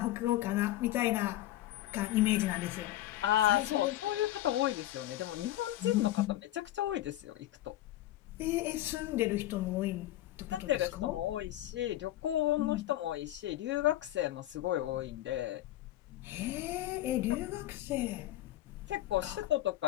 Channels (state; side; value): quieter; right; 14.5 dB